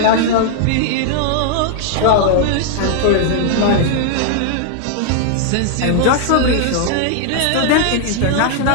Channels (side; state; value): both; different; correlation -0.01